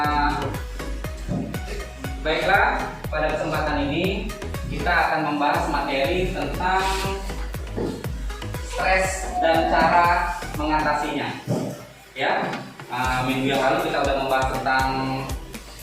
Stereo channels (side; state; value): both; identical; correlation 1.00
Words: Baiklah, pada kesempatan ini kita akan membahas materi tentang stres dan cara mengatasinya. Ya, minggu yang lalu kita sudah membahas tentang